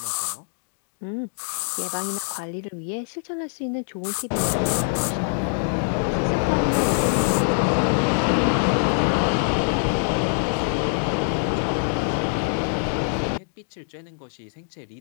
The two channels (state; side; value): silent; right; digital silence